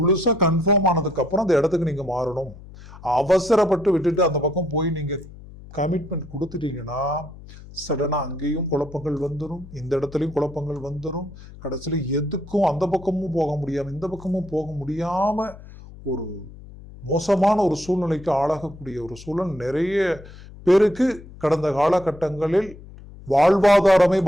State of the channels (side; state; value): left; noise; hum, 18 dB below the sound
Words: கன்ஃபார்ம் ஆனதுக்கு அப்புறம் அந்த இடத்துக்கு நீங்க மாறணும். அவசரப்பட்டு விட்டுட்டு அந்த பக்கம் போய் நீங்க கமிட்மெண்ட் கொடுத்துட்டீங்கன்னா சடனா அங்கேயும் குழப்பங்கள் வந்துடும், இந்த இடத்துலயும் குழப்பங்கள் வந்துடும். கடைசியில எதுக்கும் அந்த பக்கமும் போக முடியாம இந்த பக்கமும் போக முடியாம ஒரு மோசமான ஒரு சூழ்நிலைக்கு ஆளாகக்கூடிய ஒரு சூழல் நிறைய பேருக்கு கடந்த காலகட்டங்களில் வாழ்வாதாரமே